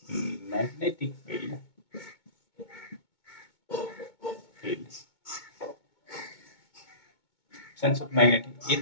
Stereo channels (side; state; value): right; late; 2.2 ms